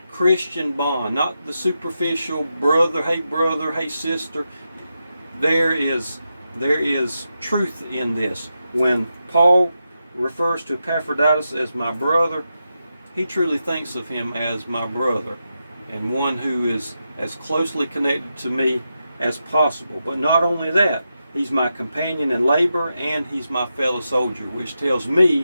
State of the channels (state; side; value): inverted; both; correlation -0.87